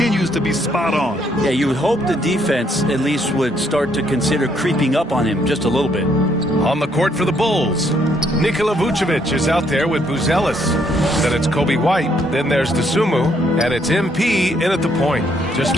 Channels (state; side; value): normal; both; correlation 0.70